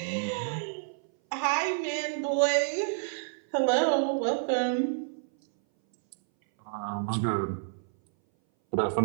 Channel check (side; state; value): left; silent; 59 dB below the other